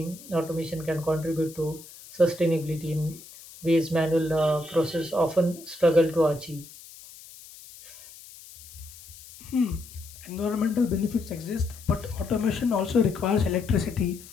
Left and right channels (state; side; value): noise; left; hiss, 18 dB below the sound